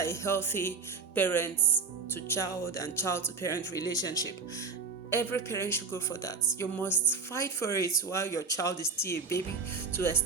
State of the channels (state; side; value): quieter; left; 4.9 dB